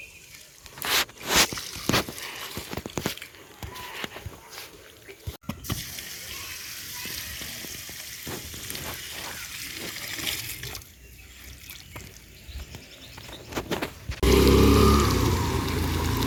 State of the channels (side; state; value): both; identical; correlation 1.00